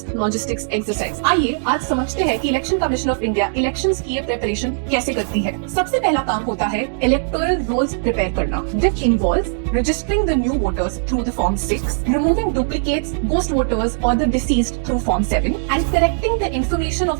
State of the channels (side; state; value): left; silent; digital silence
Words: logistics exercise. आइए आज समझते हैं कि election commission of India elections की ये preparation कैसे करती है। सबसे पहला काम होता है इलेक्टोरल रोल्स प्रिपेयर करना, which involves registering the new voters through the Form 6, removing duplicates, ghost voters or the deceased through Form 7, and correcting the information